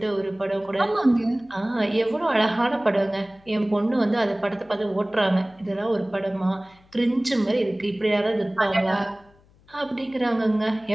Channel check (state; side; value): noise; left; hum, 30 dB below the sound